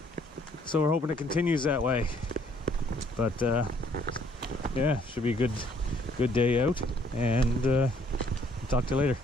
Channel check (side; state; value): both; normal; correlation 0.64